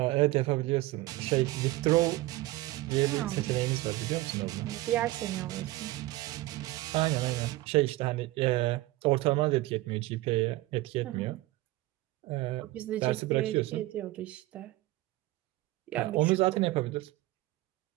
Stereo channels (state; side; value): quieter; left; 18.4 dB